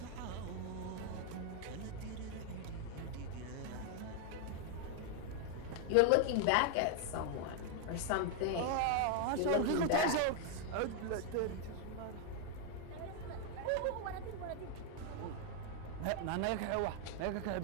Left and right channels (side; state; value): both; different; correlation 0.00